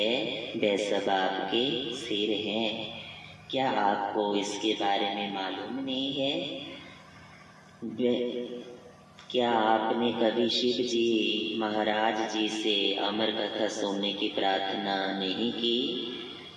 वह सब आपके सिर हैं। क्या आपको इसके बारे में मालूम नहीं है? क्या आपने कभी शिव जी महाराज जी से अमर कथा सुनने की प्रार्थना नहीं की?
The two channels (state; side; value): identical; both; correlation 1.00